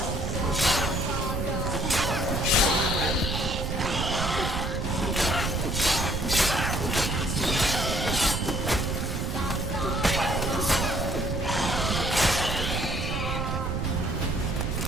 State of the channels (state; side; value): noise; right; rumble, 2 dB below the sound